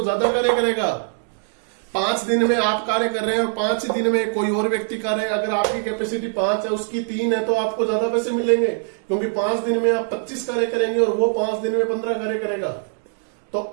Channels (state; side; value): silent; left; 60 dB below the other